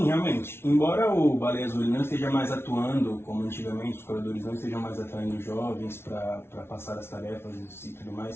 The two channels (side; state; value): right; late; 0.12 ms